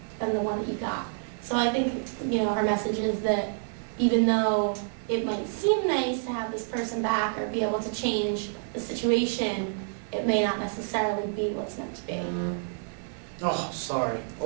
than the one that you got. So I think, her message is that even though it might seem nice to have this person back or be able to change the situation, it may not necessarily be what's meant to be. Oh, sorry.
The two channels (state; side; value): silent; left; digital silence